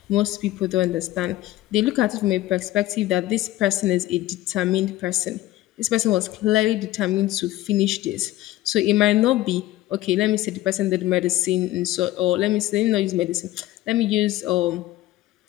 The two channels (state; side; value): quieter; right; 15.8 dB